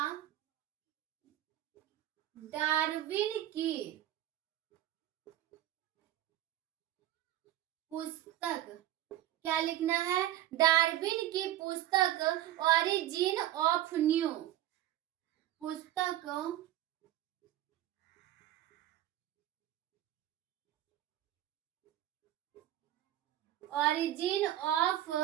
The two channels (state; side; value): quieter; left; 13.3 dB